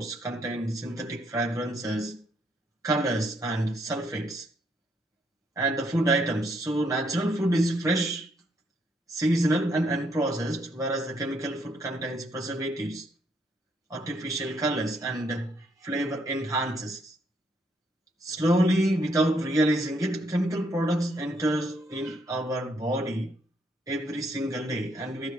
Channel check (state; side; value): normal; both; correlation 0.73